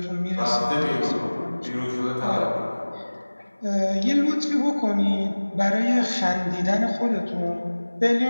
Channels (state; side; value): inverted; both; correlation -1.00